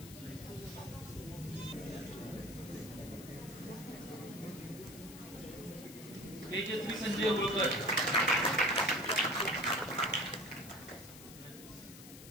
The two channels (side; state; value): left; noise; hiss, 16 dB below the sound